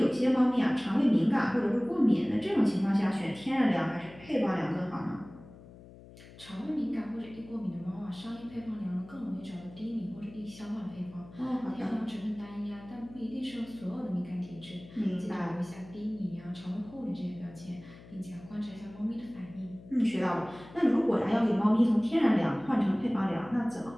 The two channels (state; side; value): noise; left; hum, 19 dB below the sound